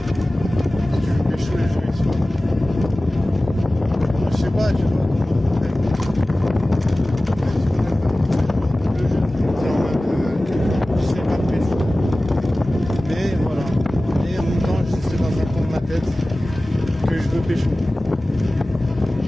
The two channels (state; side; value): normal; both; correlation 0.97